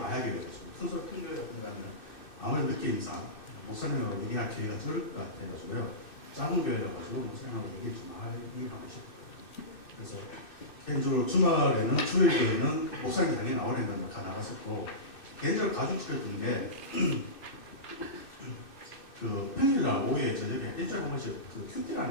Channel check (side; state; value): right; late; 2.6 ms